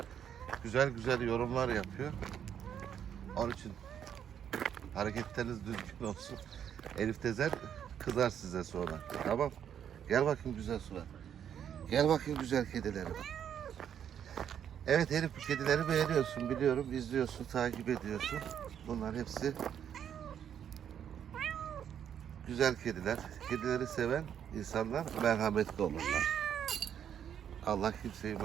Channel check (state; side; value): quieter; left; 9.0 dB